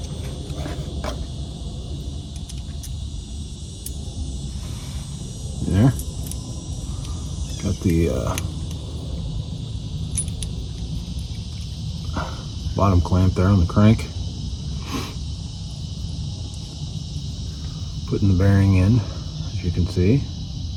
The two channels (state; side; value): identical; both; correlation 1.00